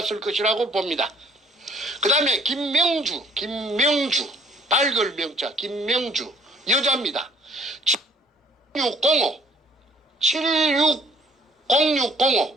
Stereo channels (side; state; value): both; normal; correlation 0.59